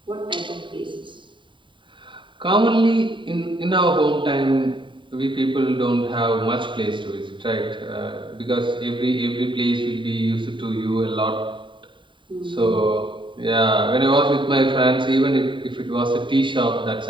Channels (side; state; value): left; late; 0.23 ms